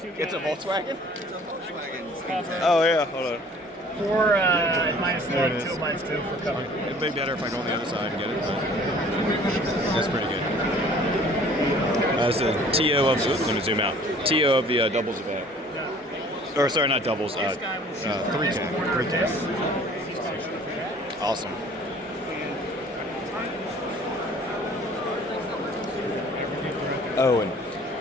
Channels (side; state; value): both; normal; correlation 0.52